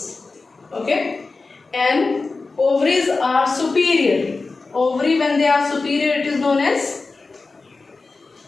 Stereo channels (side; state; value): right; quieter; 3.8 dB